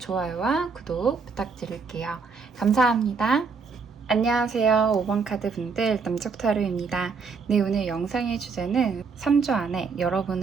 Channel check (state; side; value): quieter; left; 5.0 dB